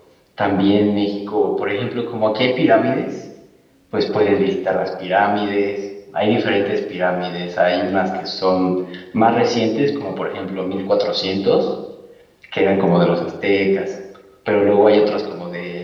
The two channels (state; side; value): identical; both; correlation 1.00